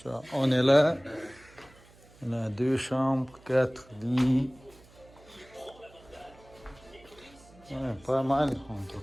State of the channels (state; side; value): noise; right; hum, 25 dB below the sound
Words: on est là. On a 2 chambres, 4 lits. Ouais, pas mal en tout